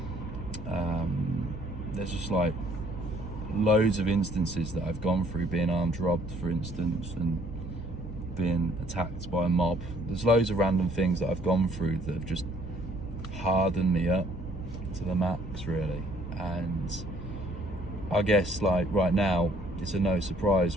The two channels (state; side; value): normal; both; correlation 0.62